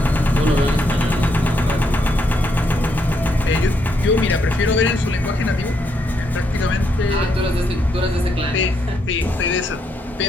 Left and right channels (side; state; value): both; normal; correlation 0.76